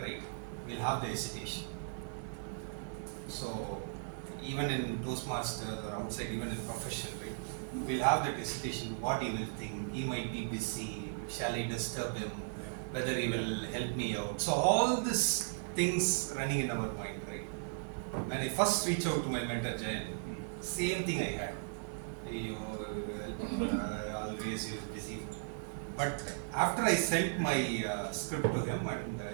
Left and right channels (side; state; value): left; silent; digital silence